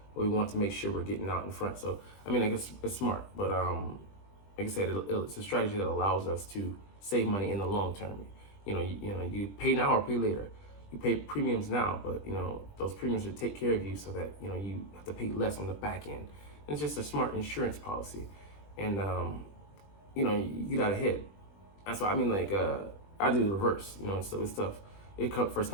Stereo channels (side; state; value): right; late; 20 ms